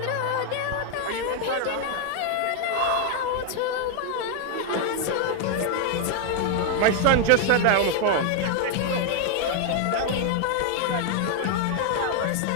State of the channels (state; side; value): different; both; correlation 0.00